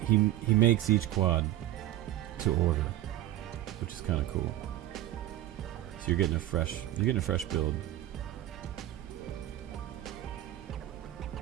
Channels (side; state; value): left; quieter; 14.3 dB